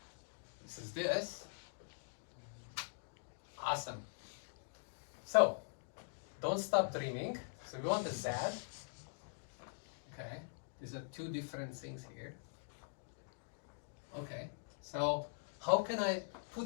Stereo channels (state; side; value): silent; right; digital silence